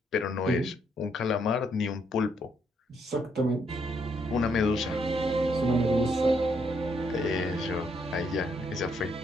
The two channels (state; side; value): normal; both; correlation 0.74